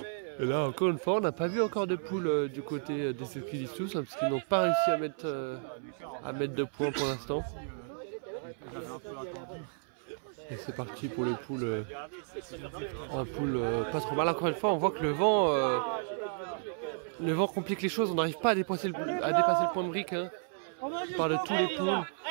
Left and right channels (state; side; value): silent; left; 56 dB below the other